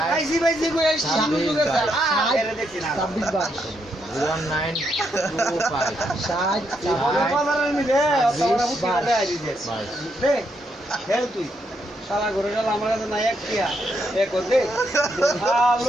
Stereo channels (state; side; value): normal; both; correlation 0.78